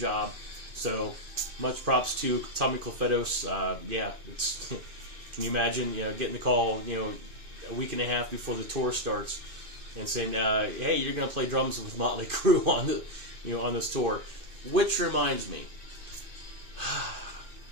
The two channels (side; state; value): left; late; 2.5 ms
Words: So much props to Tommy Clefetos. It's can you imagine getting the call a week and a half before the tour starts and saying, hey, you're going to play drums with Motley Crue on this tour. Which reminds me,